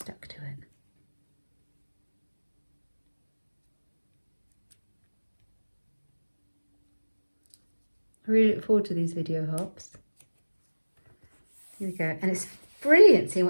to it. I really look forward to these video hops. Here we go. And it's brilliant seeing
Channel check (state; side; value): inverted; both; correlation -1.00